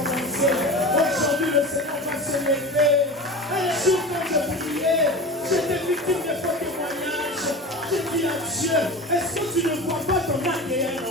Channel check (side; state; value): both; normal; correlation 0.30